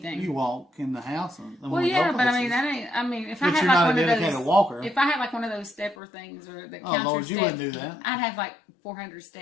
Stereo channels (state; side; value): drops out; right; at 6.0 s